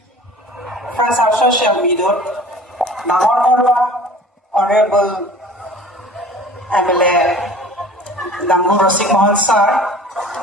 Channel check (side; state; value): both; normal; correlation 0.45